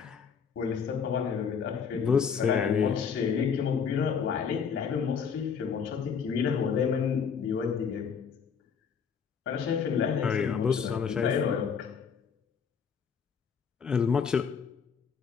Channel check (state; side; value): quieter; right; 6.6 dB